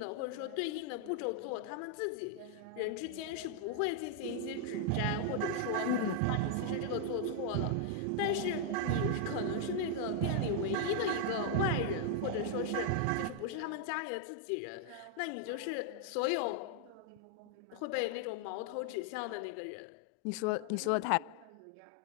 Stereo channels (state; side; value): different; both; correlation 0.00